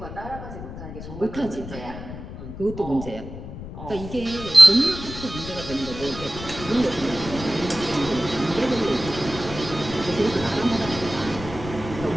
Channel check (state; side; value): noise; left; rumble, 11 dB below the sound